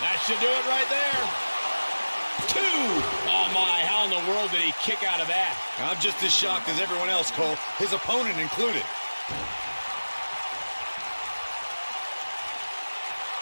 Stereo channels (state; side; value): inverted; both; correlation -1.00